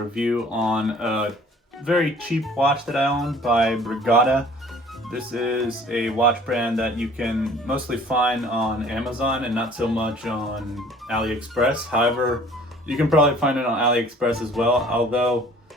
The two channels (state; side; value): normal; both; correlation 0.52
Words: on a very cheap watch that I own by Brigada. This is a watch brand that you can mostly find on Amazon and not so much on AliExpress. However, you can probably find it on AliExpress as well, although